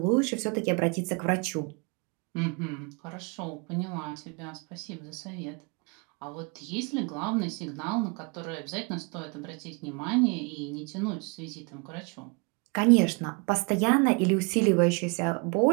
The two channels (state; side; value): quieter; left; 32.1 dB